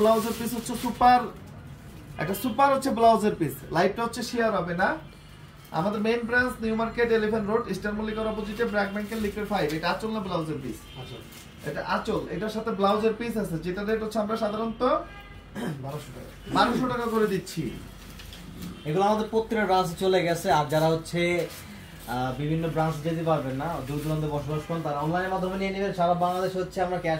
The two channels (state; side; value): identical; both; correlation 1.00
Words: পিস হচ্ছে সুপার, একটা সুপার হচ্ছে ব্লাউজের পিস। লাইভটা হচ্ছে শেয়ার হবে না। আমাদের main branch New Market, Elephant Road, Eastern মল্লিকার অপোজিটে, ব্র্যাক ব্যাংকের লিকুইড 5। এটা আঁচল না ব্লাউজের পিস? এটা আঁচল, এটার সাথে ব্লাউজের পিস আছে, যেটা রেট হচ্ছে আমরা সাধারণত 1200 টাকা করে দিচ্ছি। এগুলো আমাদের প্রত্যেকটা ব্রাঞ্চে চলে গেছে। আর যারা হচ্ছে বিভিন্ন ব্রাঞ্চ যেতে পারবেন না, দূর দূরান্তে বসবাস করেন, তারা অনলাইনের মাধ্যমে নিয়ে নেবেন। সারা বাংলাদেশ হচ্ছে আমরা